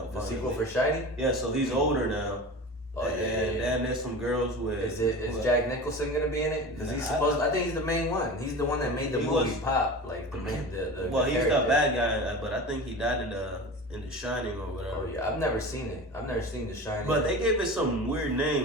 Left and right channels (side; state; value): both; normal; correlation 0.32